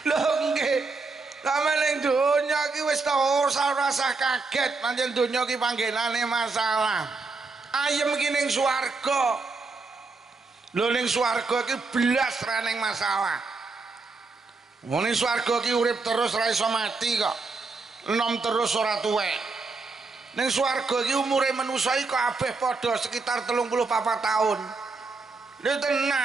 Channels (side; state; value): left; quieter; 4.0 dB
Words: Lho nggih. Sampe ning donya ki wis ta ora usah kaget, pancen donya ki panggenane masalah. Ayem ki ning swarga. Lho ning swarga ki blas ra ning masalah. Wong ning swarga ki urip terus ra iso mati kok. Enom terus ora tuwek. Ning swarga ki umure manusa iki kabeh padha sekitar 34 tahun. Lho